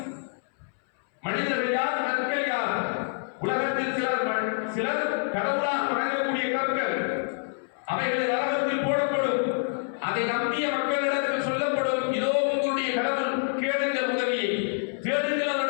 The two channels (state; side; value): silent; right; 59 dB below the other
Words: மனிதர்கள் யார், கற்கள் யார், உலகத்தில் சிலர் கடவுளாக வணங்கக்கூடிய கற்கள், அவைகளை நரகத்தில் போடப்படும். அதை நம்பிய மக்களிடத்தில் சொல்லப்படும், இதோ உங்களுடைய கடவுள், கேளுங்கள் உதவியை, தேடுங்கள்